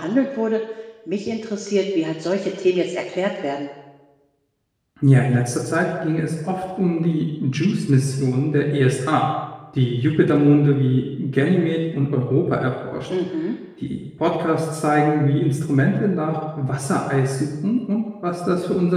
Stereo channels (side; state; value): both; identical; correlation 1.00